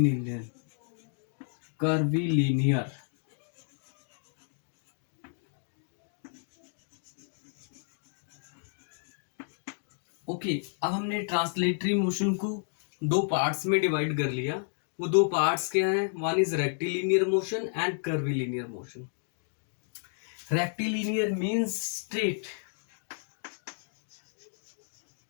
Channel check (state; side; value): silent; right; digital silence